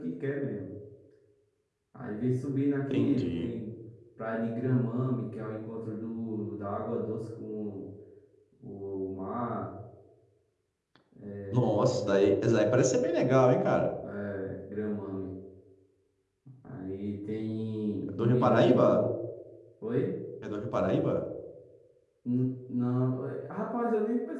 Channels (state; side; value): identical; both; correlation 1.00